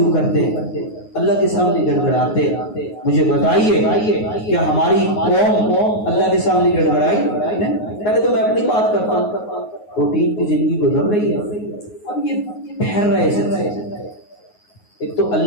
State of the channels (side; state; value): right; late; 9.5 ms